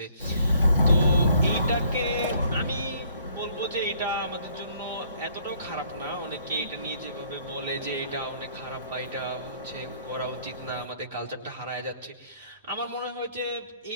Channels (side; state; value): both; inverted; correlation -0.63